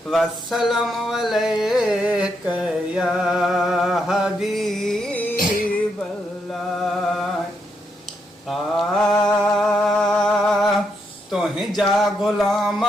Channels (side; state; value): both; normal; correlation 0.79